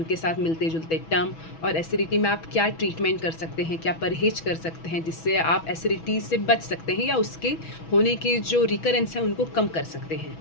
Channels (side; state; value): right; late; 6.1 ms